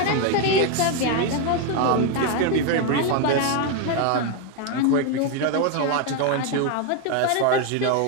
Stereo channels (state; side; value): different; both; correlation 0.01